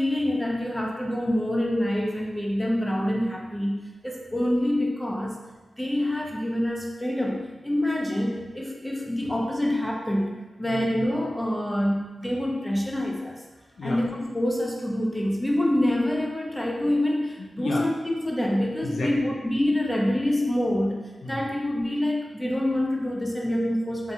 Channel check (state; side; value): normal; both; correlation 0.97